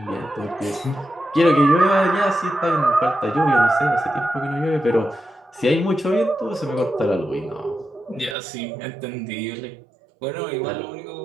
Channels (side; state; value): left; drops out; at 8.3 s